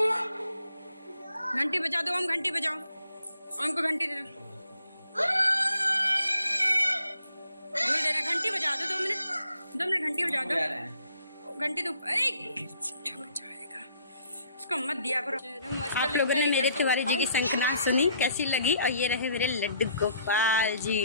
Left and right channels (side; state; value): both; inverted; correlation -0.65